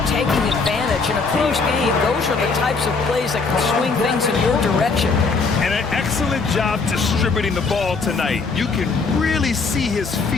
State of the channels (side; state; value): right; quieter; 4.4 dB